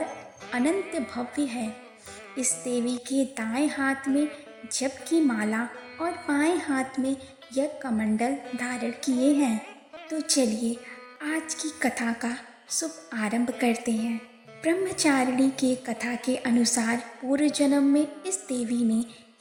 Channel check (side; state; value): both; identical; correlation 1.00